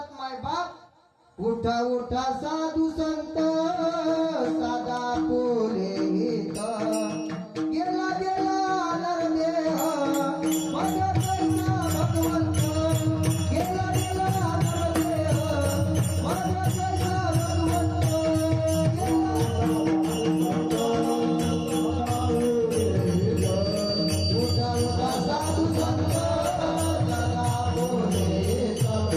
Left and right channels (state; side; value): identical; both; correlation 1.00